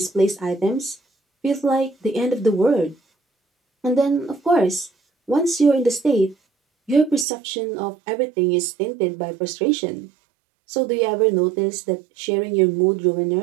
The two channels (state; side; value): drops out; left; at 7.2 s